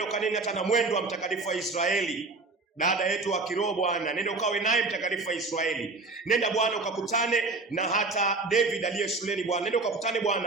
ukanene hata na mwendo wa mtakatifu wa Israeli, dada yetu wa kiroho Bwana, nenda ukawe naye mtakatifu wa Israeli. Nenda Bwana ukakutane na hata David aliye shuleni Bwana, nenda ukakutane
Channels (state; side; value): quieter; left; 3.6 dB